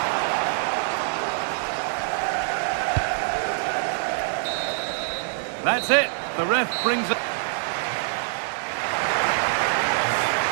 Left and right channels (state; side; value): silent; left; 62 dB below the other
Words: That's it. The ref brings it.